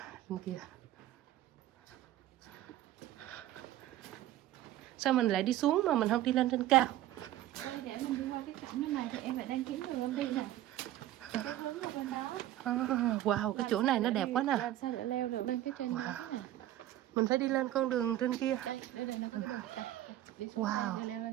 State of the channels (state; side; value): quieter; left; 13.8 dB